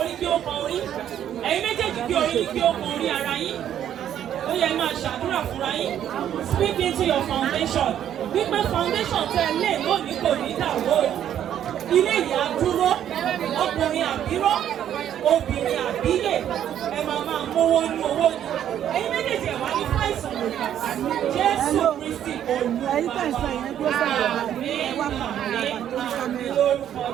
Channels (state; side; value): quieter; left; 10.4 dB